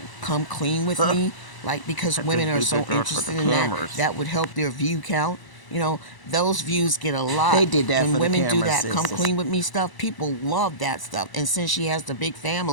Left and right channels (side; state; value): right; late; 1.0 ms